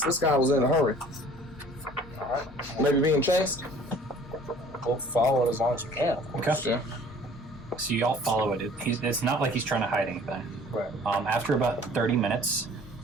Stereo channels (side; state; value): both; normal; correlation 0.51